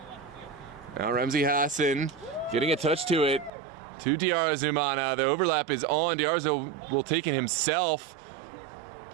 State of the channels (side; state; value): left; drops out; at 3.5 s